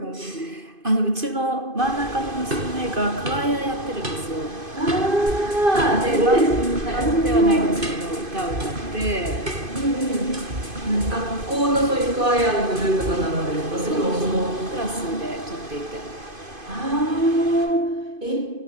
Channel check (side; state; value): left; late; 2.5 ms